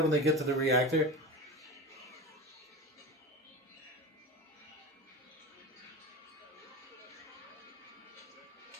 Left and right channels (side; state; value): both; normal; correlation 0.28